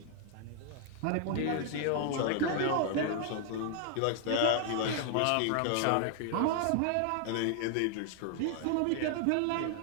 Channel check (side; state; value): both; different; correlation 0.00